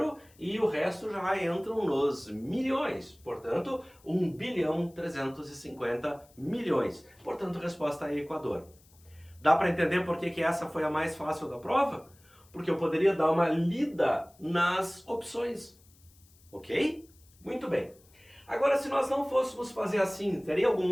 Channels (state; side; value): noise; left; hiss, 29 dB below the sound